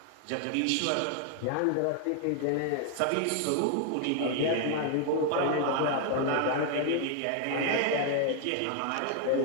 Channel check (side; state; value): both; different; correlation 0.00